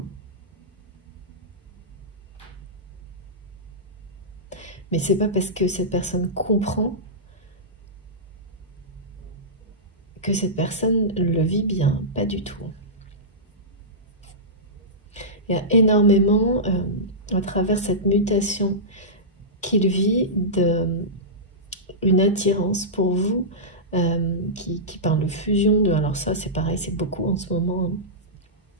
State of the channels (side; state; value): both; normal; correlation -0.15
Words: Mais c'est pas parce que cette personne comprend que cette personne le vit bien, pas du tout. Il y a énormément, à travers cette mutation qu'il vit, une attirance pour vous, qui parle de fusion, alors ça c'est pareil, c'est beaucoup en ce moment,